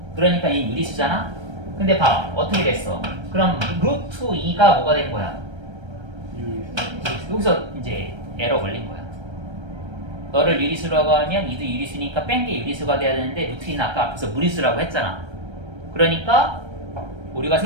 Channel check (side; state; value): left; late; 1.3 ms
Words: 그러니까 이 유리수잖아. 근데 봐, 어떻게 됐어? 그럼 루트 2가 뭐가 된 거야? 여기서 이제 에러 걸린 거야. 너를 유리수라고 하면 이도 유리수니까 뺀 게 유리수가 돼야 되는데 루트 2는 아까 앞에서 무리수라고 했잖아. 그러니까 오류가